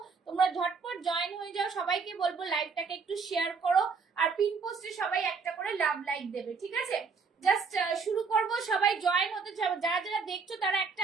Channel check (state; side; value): quieter; left; 5.1 dB